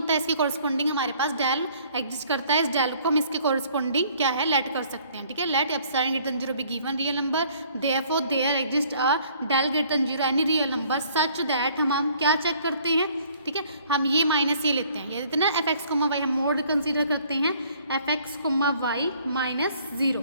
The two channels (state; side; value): inverted; both; correlation -0.58